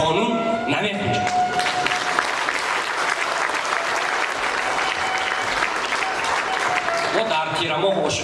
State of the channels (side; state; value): both; identical; correlation 1.00